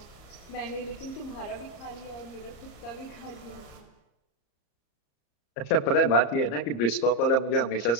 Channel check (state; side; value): late; right; 34 ms